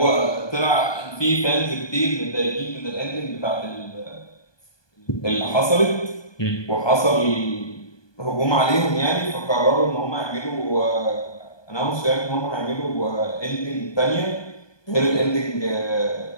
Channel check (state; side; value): late; right; 1.2 ms